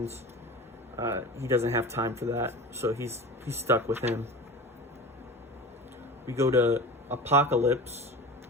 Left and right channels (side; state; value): both; normal; correlation 0.33